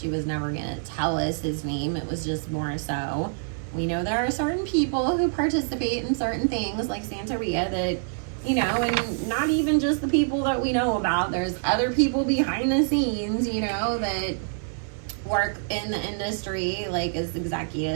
was never going to tell us his name. It was just more so, we know there are certain people who participate in certain things like Santeria that, you know, and not even just the people that we know about. There's other people behind the scenes, you know, that work in the industry, like as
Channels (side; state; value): left; silent; digital silence